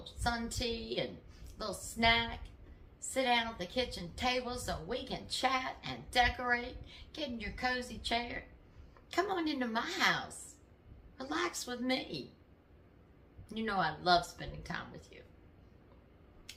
sun tea and a little snack. Sit down at the kitchen table so we can chat and decorate. Get in your cozy chair. Come on into my house. Relax with me. You know I love spending time with you.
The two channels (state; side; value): identical; both; correlation 1.00